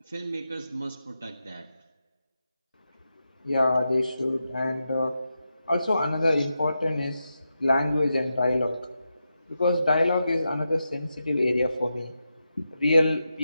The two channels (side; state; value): both; inverted; correlation -0.88